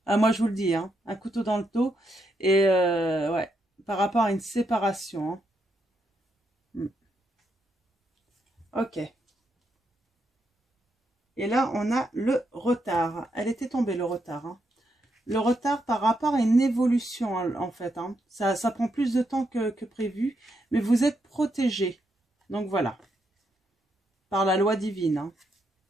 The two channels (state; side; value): normal; both; correlation 0.80